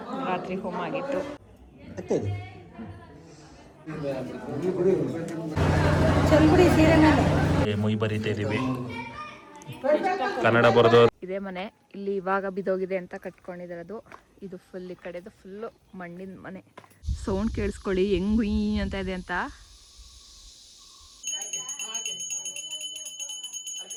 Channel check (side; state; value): both; identical; correlation 1.00